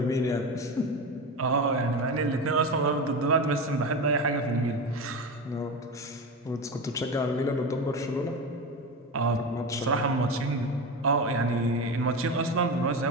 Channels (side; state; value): both; normal; correlation 0.23